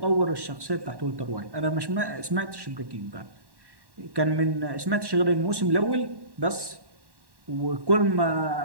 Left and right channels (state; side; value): late; left; 1.1 ms